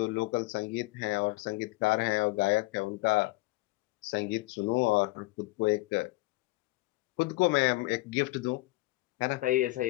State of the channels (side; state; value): right; quieter; 21.4 dB